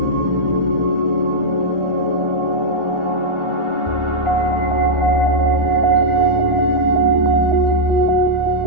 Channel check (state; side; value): late; left; 1.4 ms